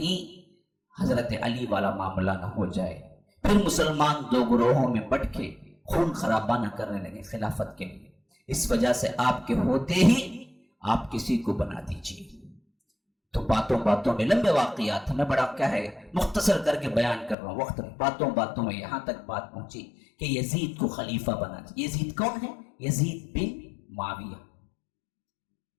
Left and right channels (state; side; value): drops out; right; at 17.4 s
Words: حضرت علی والا معاملہ نہ ہو جائے، پھر مسلمان 2 گروہوں میں بٹ کے خون خرابہ نہ کرنے لگے خلافت کے لیے، اس وجہ سے آپ کے ہوتے ہی آپ کسی کو بنا دیجیے۔ تو باتوں میں لمبے واقعات ہیں، میں بڑا کیا ہے مختصر کر کے بیان کر رہا ہوں، وقت نہیں، باتوں میں یہاں تک بات پہنچی کہ یزید کو خلیفہ بنا دیجیے۔ یزید کون ہے؟ یزید بن معاویہ،